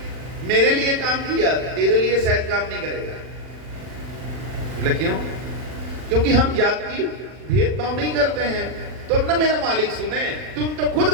मेरे लिए काम किया, तेरे लिए शायद काम नहीं करेगा। बोले क्यों? क्योंकि हम जाति भेदभाव नहीं करते हैं, तो अपना मेरा मालिक सुने, तुम तो खुद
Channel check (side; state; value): left; late; 40 ms